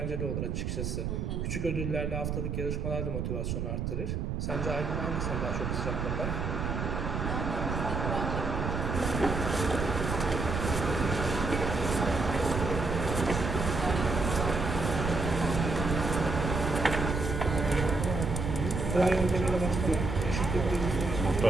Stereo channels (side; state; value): right; noise; rumble, 2 dB below the sound